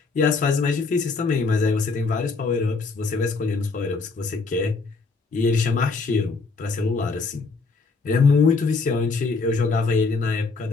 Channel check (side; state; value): right; quieter; 4.2 dB